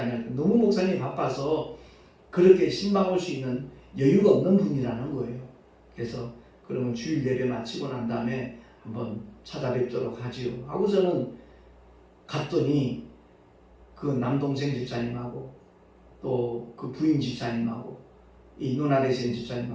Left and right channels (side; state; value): both; identical; correlation 1.00